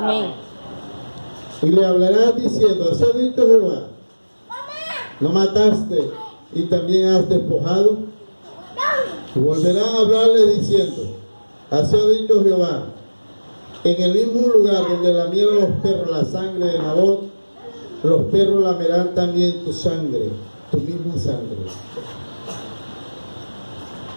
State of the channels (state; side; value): inverted; both; correlation -1.00